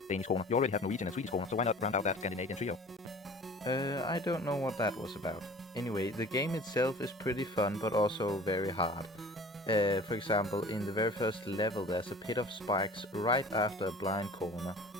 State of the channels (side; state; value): both; normal; correlation 0.44